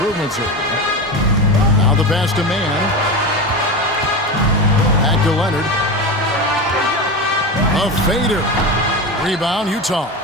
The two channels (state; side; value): normal; both; correlation 0.22